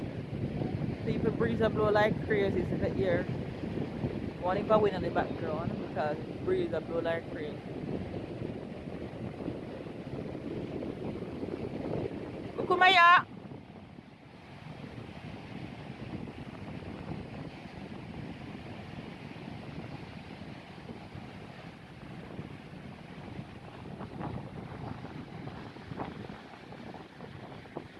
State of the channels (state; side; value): identical; both; correlation 1.00